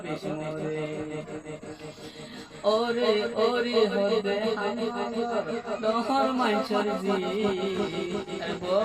বেশমরে ওরে ওরে হদে দহর মাইছর জি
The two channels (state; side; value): noise; left; rumble, 28 dB below the sound